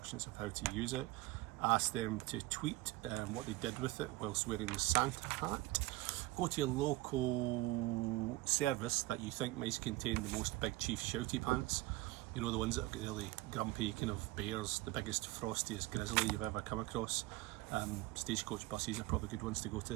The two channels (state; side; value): quieter; left; 19.2 dB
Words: of how to use it. Ask them to tweet what they did with it whilst wearing the Santa hat. Go to your local service that you think might contain the most Big Chief shouty pants. You know, the ones that have got really grumpy kind of bears, the biggest, frostiest grizzly you've ever come across. Stagecoach buses are probably good ones to go